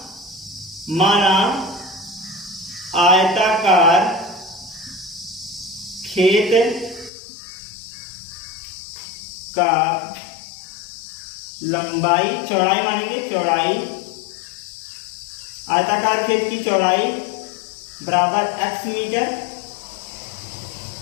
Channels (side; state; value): right; drops out; at 7.1 s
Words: माना आयताकार खेत का लंबाई, चौड़ाई मानेंगे, चौड़ाई, आयताकार खेत की चौड़ाई बराबर x मीटर।